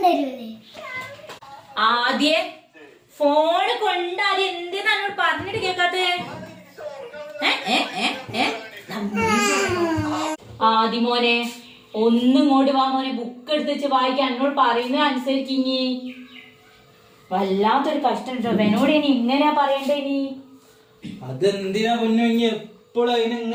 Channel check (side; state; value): both; identical; correlation 1.00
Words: ആദ്യേ ഫോണ് കൊണ്ടാദ്യം എന്തിനാണ് പറഞ്ഞിട്ട് കേക്കാത്തേ? ആദ്യമോനെ ഒന്നും ഇങ്ങോട്ട് വാ മോനെ, ബുക്ക് എടുത്ത് വെച്ച് വായിക്കാൻ എന്നോട് പറയുന്നത് അനുസരിക്കിഞ്ഞി. വല്ലാത്തൊരു കഷ്ടം കേട്ടോ. എന്നോട് ഇനി ഇങ്ങനെയാ പറയണ്ടേ? ഇനി അതെന്തിനാ പൊന്നു എപ്പോഴും അതിനെ